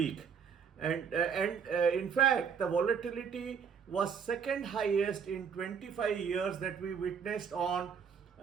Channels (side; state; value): left; quieter; 6.8 dB